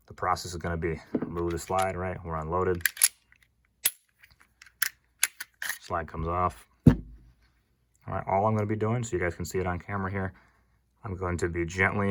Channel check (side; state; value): both; identical; correlation 1.00